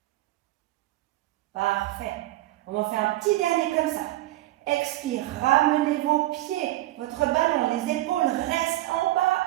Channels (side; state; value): left; quieter; 16.6 dB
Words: Parfait. On en fait un petit dernier comme ça. Expire, ramenez vos pieds, votre ballon, les épaules restent en bas.